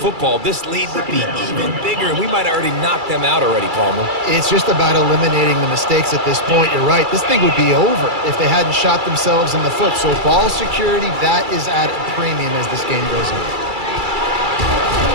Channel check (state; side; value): late; left; 2.3 ms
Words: this lead would be even bigger, and we might have already knocked them out already, Palmer. It's just about eliminating the mistakes at this point. You're right. This thing would be over if they hadn't shot themselves in the foot. So ball security, that is at a premium as this game goes on.